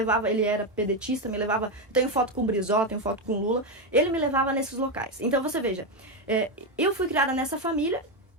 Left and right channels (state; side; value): normal; both; correlation 0.09